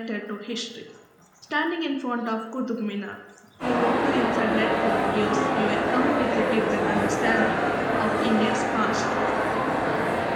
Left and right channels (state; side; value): identical; both; correlation 1.00